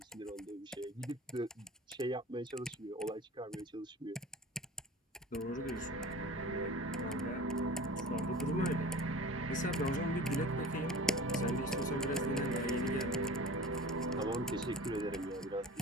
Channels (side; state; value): both; normal; correlation 0.39